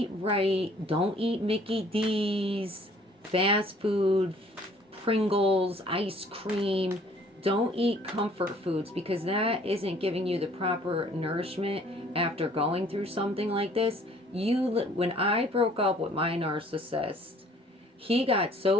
right. Don't eat Mickey D's, fast food, Pringles, ice cream. Don't eat comfort foods, because that isn't giving you the proper nourishment after going through something like this. When I broke up with my narcissist, he got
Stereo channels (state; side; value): normal; both; correlation 0.57